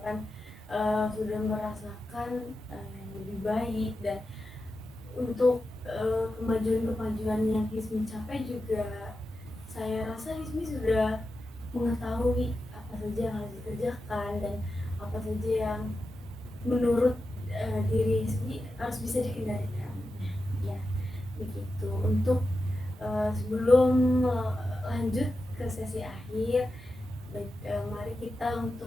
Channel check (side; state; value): both; normal; correlation 0.90